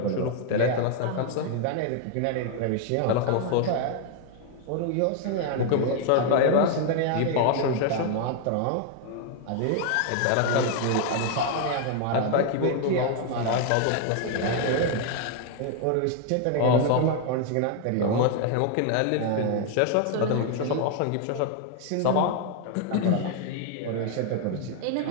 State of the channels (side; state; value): both; different; correlation 0.00